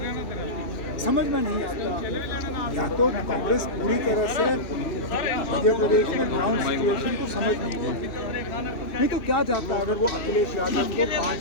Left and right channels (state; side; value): late; right; 2.8 ms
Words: समझ में नहीं आता, या तो कांग्रेस पूरी तरह से मध्य प्रदेश में ग्राउंड सिचुएशन को समझ नहीं पाती, नहीं तो क्या जाता अगर वो अखिलेश यादव को